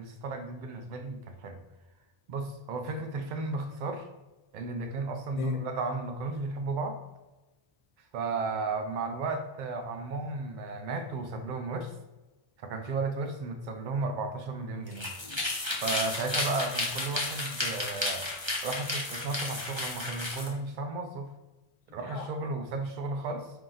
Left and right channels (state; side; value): late; left; 1.3 ms